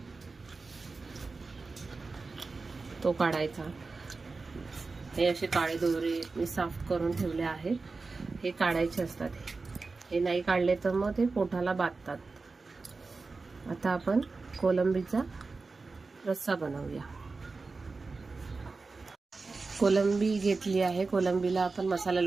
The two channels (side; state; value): left; quieter; 4.0 dB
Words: तो काढायचा. हे असे काळे दोरे मी साफ करून ठेवले आहेत, हे काढायचे असतात. हे नाही काढले तर मग ते पोटाला बांधतात. आता आपण कोलंबीचा रस्सा बनवूया. कोलंबी घेतली आहे, कोलंबीला आपण मसाला